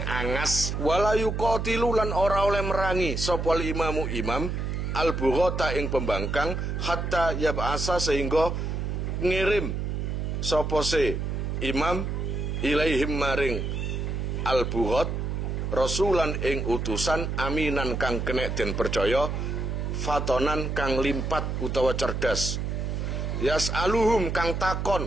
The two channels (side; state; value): right; noise; hum, 2 dB below the sound